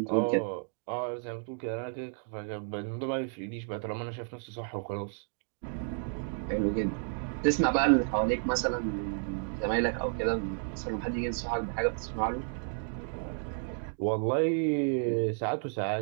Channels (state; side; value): silent; left; 56 dB below the other